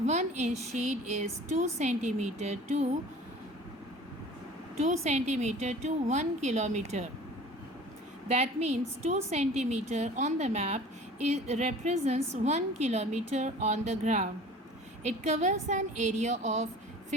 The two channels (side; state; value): both; normal; correlation 0.44